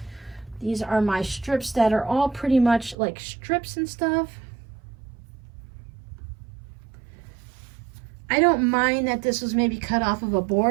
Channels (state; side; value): drops out; left; at 3.0 s